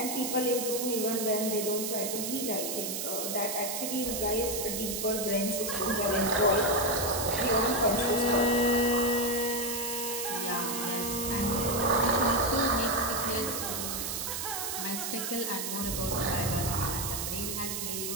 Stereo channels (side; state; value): right; noise; hiss, 3 dB below the sound